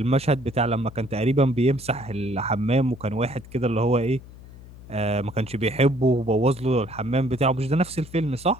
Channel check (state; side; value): noise; left; hum, 18 dB below the sound